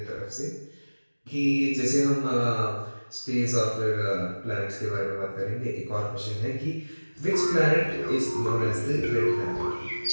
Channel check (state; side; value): inverted; both; correlation -1.00